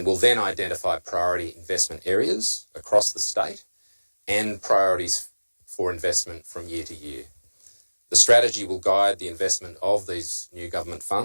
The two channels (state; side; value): inverted; both; correlation -1.00